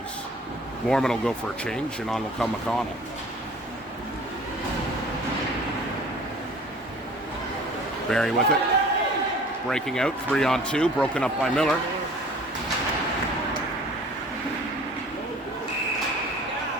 Mormon will go for a change, and on will come McConnell. Barrie with it. Breaking out, 3-on-2, broken up by Miller.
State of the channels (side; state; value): both; normal; correlation 0.48